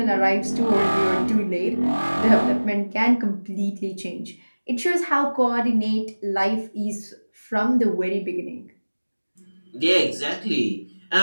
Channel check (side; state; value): both; inverted; correlation -1.00